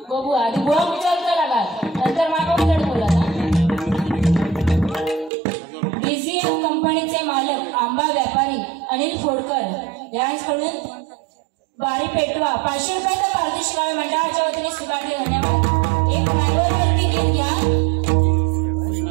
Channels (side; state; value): left; drops out; at 5.3 s